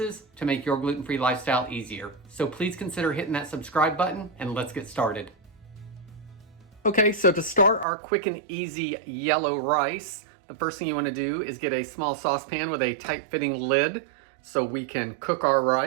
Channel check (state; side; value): drops out; left; at 7.9 s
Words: to make your gluten-free lifestyle easier. So please consider hitting that subscribe button and let's get started. Okay, so to start our quick and easy yellow rice, the first thing you want to do is get a small saucepan with a tight-fitting lid so we can cook our